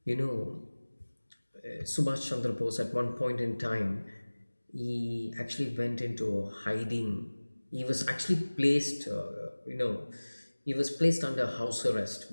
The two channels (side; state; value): both; inverted; correlation -1.00